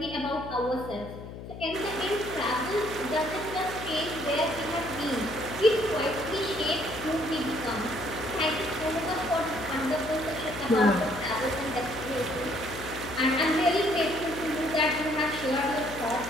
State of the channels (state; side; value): noise; left; hum, 11 dB below the sound